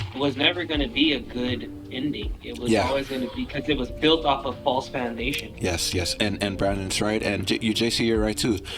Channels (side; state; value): both; identical; correlation 1.00